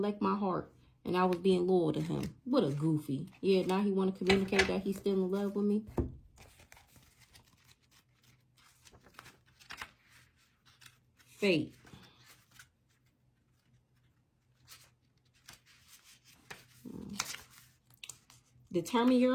my heart. And I was being loyal to him. What a goofy. Yeah, now he want to communicate that he's still in love with me. Fate. Determine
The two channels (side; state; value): both; identical; correlation 1.00